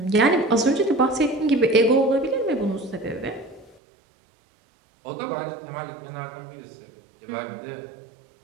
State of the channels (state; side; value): drops out; left; at 3.8 s